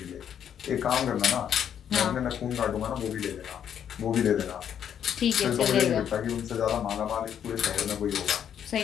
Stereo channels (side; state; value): right; quieter; 9.0 dB